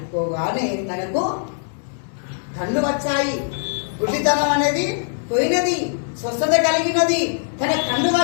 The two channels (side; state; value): right; silent; 62 dB below the other